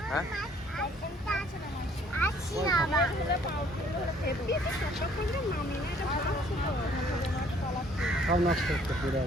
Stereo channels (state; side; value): normal; both; correlation 0.60